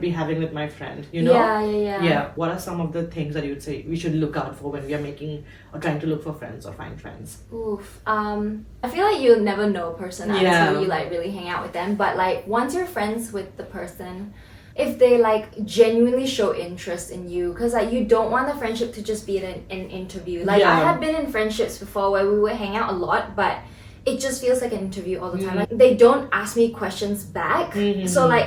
having with my friend? You know? Yeah. What are some of the things that you would say we should look out for when we are making or trying to look for friends or find friends? Oof. I feel like you'll never know a person until you like really hang out with them. But like once you're friends with the person, if they like genuinely show interest in you, because like you don't want the friendship to just be an interview. Like I have been in friendships before where we would hang out a lot, but it just feels like an interview all the time. Like, they don't ask me questions back. So like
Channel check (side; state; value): both; identical; correlation 1.00